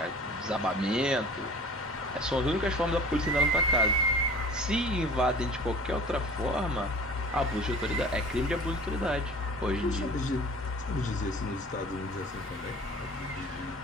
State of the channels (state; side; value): normal; both; correlation 0.44